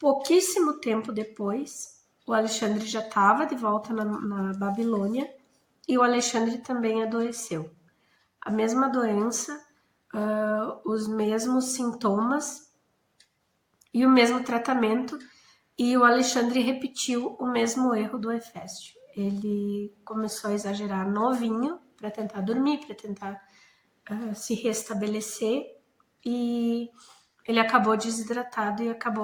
tempo depois, o Alexandre já estava de volta na Babilônia e o Alexandre também adoeceu. A mesma doença, os mesmos sintomas e o mesmo tratamento, e o Alexandre repetiu o mesmo erro do Heféstio. Ele começou a exagerar no vinho para tentar dormir, para tentar se restabelecer, e ele acabou desidratado e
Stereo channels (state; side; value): identical; both; correlation 1.00